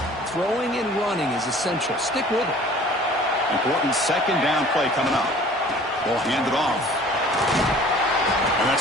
throwing and running is essential. Stick with it. Important second down play coming up. Ball handed off. And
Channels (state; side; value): normal; both; correlation 0.49